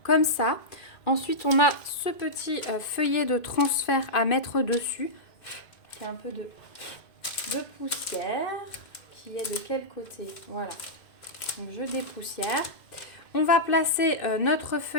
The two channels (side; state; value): right; late; 2.1 ms